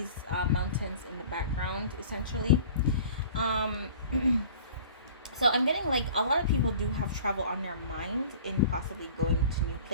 mountains in the background essentially. So I'm getting, like, a lot of people do have travel on their mind, in possibly going to new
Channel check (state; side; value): inverted; both; correlation -0.44